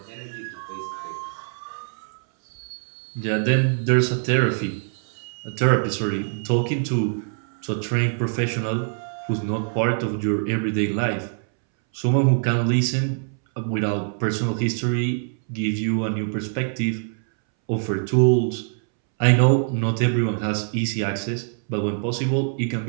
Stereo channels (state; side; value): silent; left; 63 dB below the other